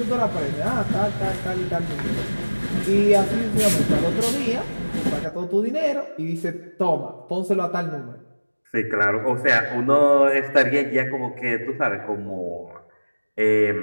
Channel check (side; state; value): both; inverted; correlation -1.00